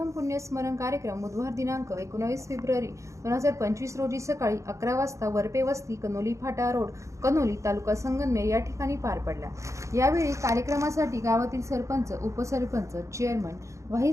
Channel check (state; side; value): late; left; 0.15 ms